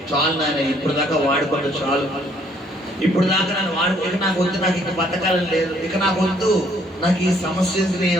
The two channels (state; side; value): normal; both; correlation 0.64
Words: చాలు నాయన, ఇప్పుడు దాకా వాడుకోండి, చాలు, ఇప్పుడు దాకా నన్ను ఇక నాకు వద్దు, నాకు ఇక బతకాలని లేదు, ఇక నాకు వద్దు, నాకు ఈ సమస్య